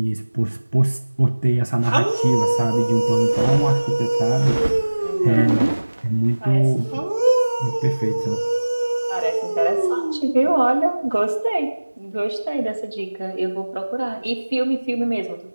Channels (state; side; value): inverted; both; correlation -1.00